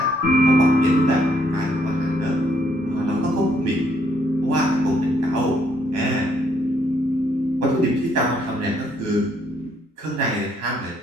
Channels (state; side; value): normal; both; correlation 0.70